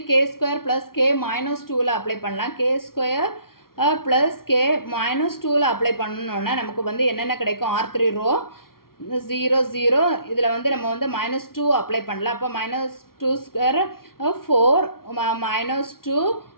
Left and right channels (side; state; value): right; late; 0.93 ms